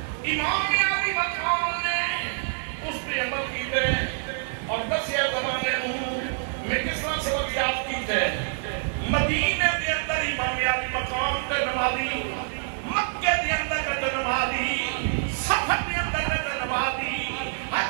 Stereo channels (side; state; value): left; silent; digital silence